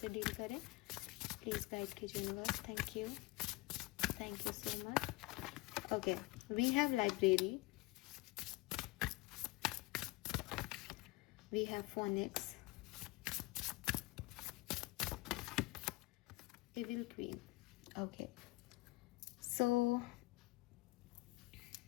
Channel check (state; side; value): quieter; right; 21.7 dB